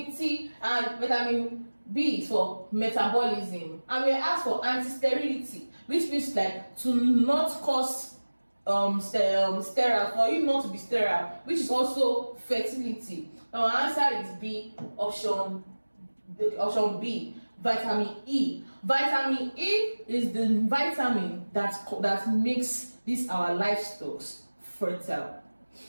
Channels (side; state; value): both; inverted; correlation -1.00